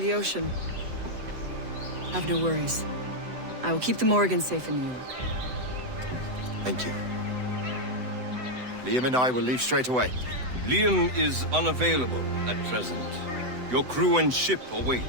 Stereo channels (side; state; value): left; late; 7.9 ms